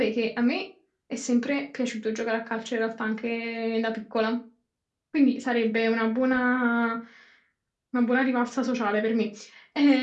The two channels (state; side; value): identical; both; correlation 1.00